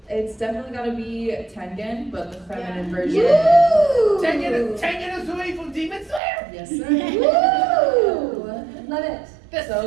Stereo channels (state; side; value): drops out; left; at 6.2 s